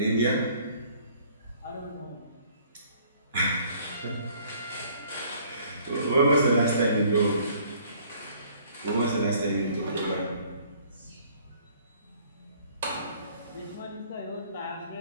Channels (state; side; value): inverted; both; correlation -0.58